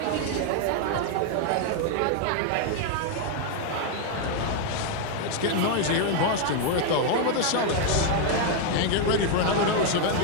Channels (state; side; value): different; both; correlation 0.00